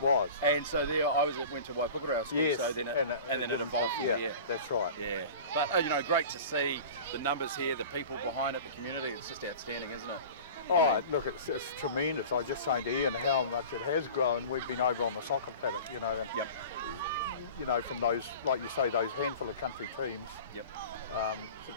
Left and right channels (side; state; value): both; inverted; correlation -0.38